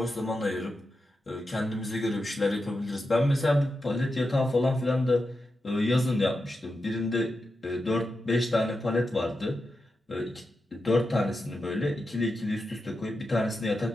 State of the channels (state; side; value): normal; both; correlation 0.89